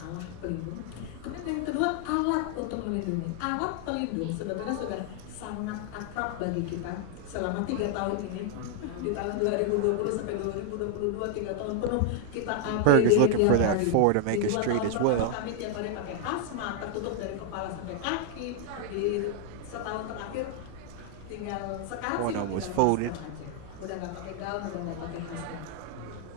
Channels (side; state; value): both; different; correlation 0.00